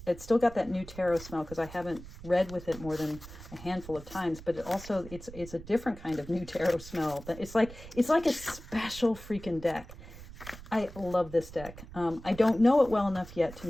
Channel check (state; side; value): noise; right; rumble, 15 dB below the sound